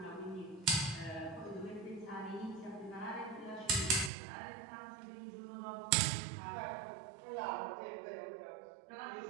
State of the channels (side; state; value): left; drops out; at 4.1 s